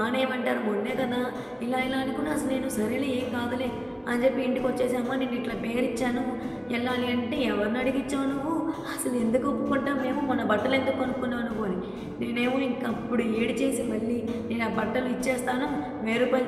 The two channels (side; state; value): both; identical; correlation 1.00